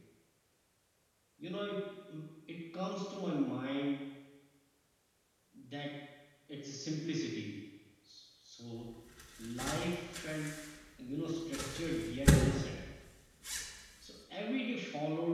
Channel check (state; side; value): identical; both; correlation 1.00